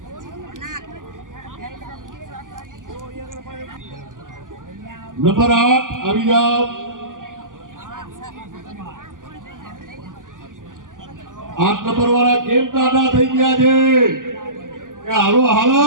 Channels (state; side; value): late; left; 0.88 ms